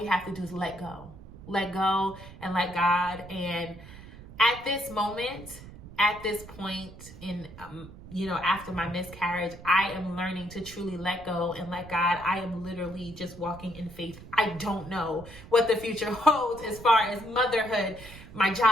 have to do is let go and let God. And at this moment, at this point in, after my miscarriage, I am learning to truly let go and let God. I am literally just walking in faith. I don't know what the future holds as far as motherhood, my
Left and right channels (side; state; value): right; noise; rumble, 17 dB below the sound